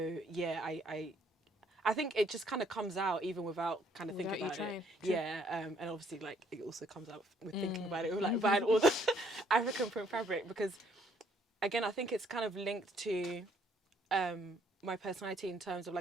yeah, I think it just kind of comes out even without kind of thinking about it. Yeah, and obviously like it also comes out with thinking about it, with like buying all the African print fabric, because again I think it's kind of linked to my personality in terms of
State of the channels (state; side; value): normal; both; correlation 0.66